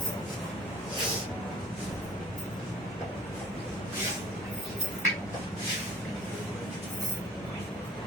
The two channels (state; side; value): normal; both; correlation 0.51